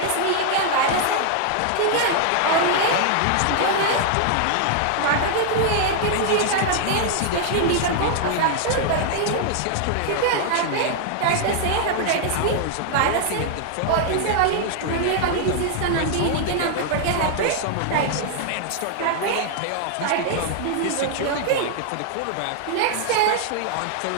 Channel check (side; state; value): both; different; correlation 0.00